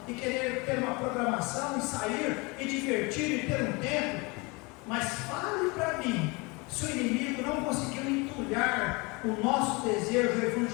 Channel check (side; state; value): right; quieter; 27.2 dB